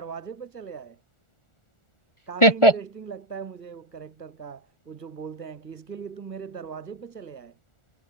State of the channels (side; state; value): right; late; 1.4 ms